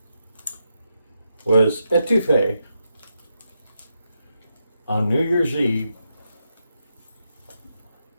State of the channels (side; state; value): both; inverted; correlation -0.83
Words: was etouffee on New Year's Eve,